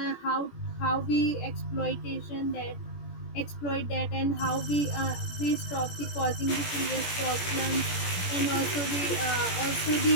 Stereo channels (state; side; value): late; right; 17 ms